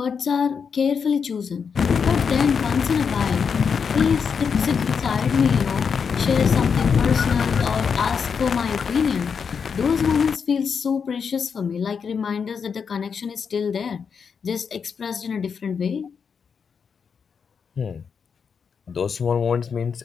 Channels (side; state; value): right; quieter; 6.3 dB